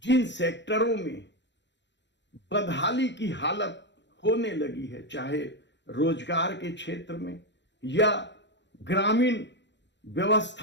जिन सेक्टरों में बदहाली की हालत होने लगी है, चाहे रोजगार के क्षेत्र में या ग्रामीण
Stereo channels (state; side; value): late; right; 0.52 ms